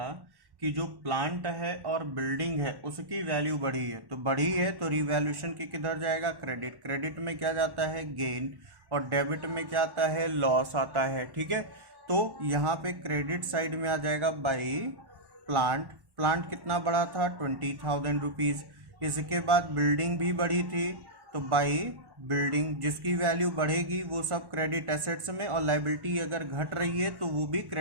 कि जो प्लांट है और बिल्डिंग है उसकी वैल्यू बढ़ी है, तो बढ़ी है तो रिवैल्यूएशन की किधर जाएगा, क्रेडिट। क्रेडिट में क्या जाता है, गेन, और डेबिट में क्या आता है, लॉस आता है। ठीक है, तो यहाँ पे क्रेडिट साइड में आ जाएगा बाई प्लांट। प्लांट कितना बढ़ा था 20,000 रुपीज। इसके बाद बिल्डिंग भी बढ़ी थी, तो बाई बिल्डिंग, जिसकी वैल्यू बढ़ेगी वो सब क्रेडिट एसेट्स में, और लाइबिलिटी अगर घट रही है तो वो भी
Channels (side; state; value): left; late; 1.1 ms